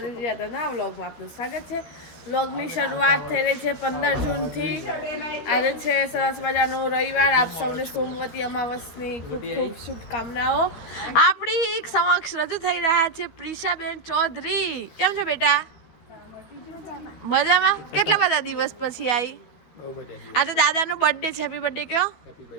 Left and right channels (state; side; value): late; right; 13 ms